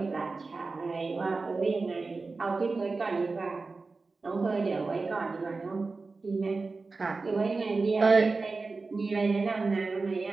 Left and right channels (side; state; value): left; quieter; 3.9 dB